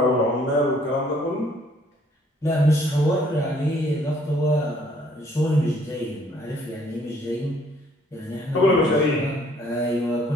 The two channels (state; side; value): normal; both; correlation 0.62